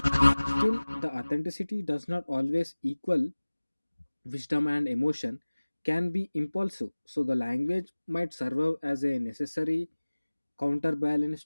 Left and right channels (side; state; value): both; inverted; correlation -1.00